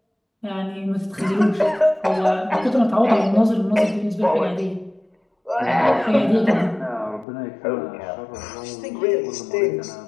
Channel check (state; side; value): drops out; right; at 7.2 s